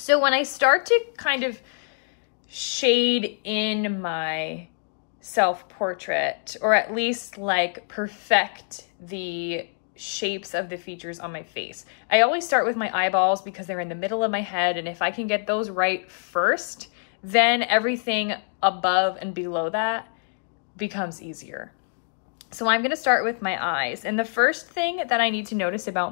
when I start to kind of shade in my self-portrait, or at least like perfect the shapes of the features on my face, I always start with my eyeballs because they're in the middle of my head, and if I can get those right first, then everything above and below that becomes easier. So I'm gonna start with my eyes, and the first thing that I need to notice about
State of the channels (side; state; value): right; silent; digital silence